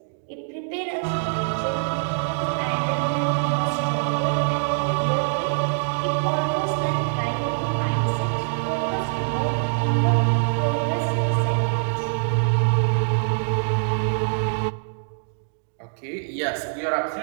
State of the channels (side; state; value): left; silent; digital silence